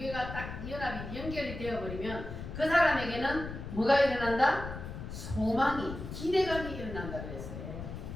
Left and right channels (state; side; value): noise; left; rumble, 8 dB below the sound